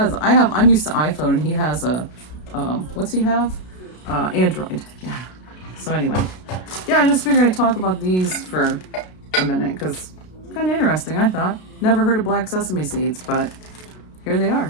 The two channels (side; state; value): right; late; 33 ms